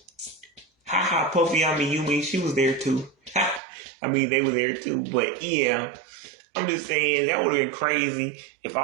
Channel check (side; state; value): left; drops out; at 3.6 s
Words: Ha Puffy Yumi, she was there too. They were there too. But yeah, I'm just saying that would have been crazy if